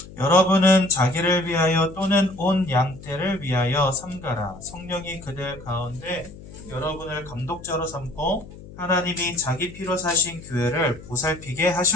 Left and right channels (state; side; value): noise; left; hum, 17 dB below the sound